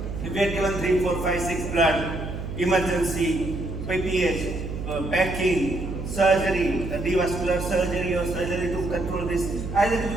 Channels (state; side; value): noise; right; hum, 6 dB below the sound